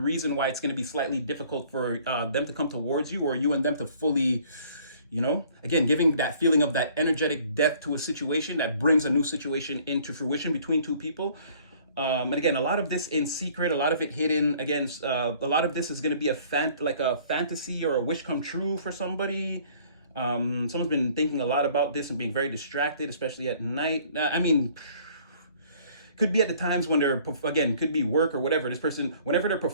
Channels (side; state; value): both; inverted; correlation -0.56